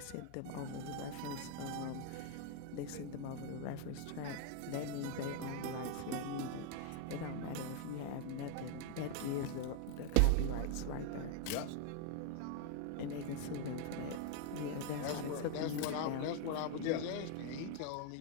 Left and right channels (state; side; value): different; both; correlation 0.00